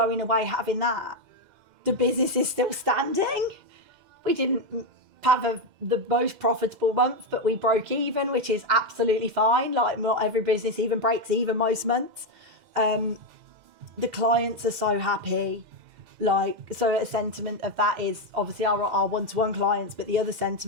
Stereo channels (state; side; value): late; left; 2.0 ms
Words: away, having that, the business is still standing. We didn't have the most profitable month, but we broke even, which is absolutely fine. Like, not every business even breaks even most months. The clients are so happy. Like, so a sentiment of that is obviously our one-to-one clients, but the other